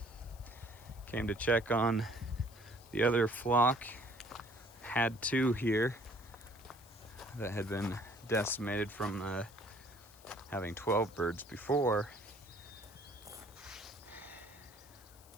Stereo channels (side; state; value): left; noise; hiss, 23 dB below the sound